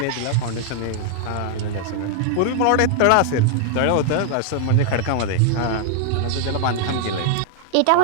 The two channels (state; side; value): different; both; correlation 0.00